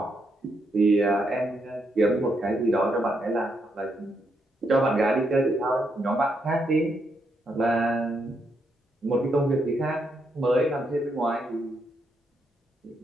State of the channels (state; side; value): normal; both; correlation 0.79